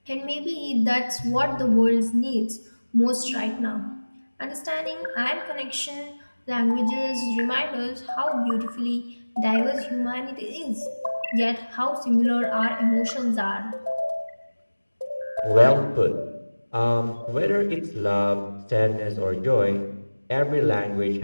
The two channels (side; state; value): both; inverted; correlation -1.00